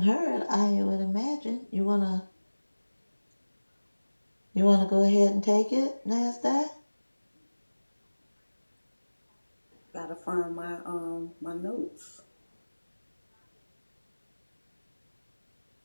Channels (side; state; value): both; inverted; correlation -1.00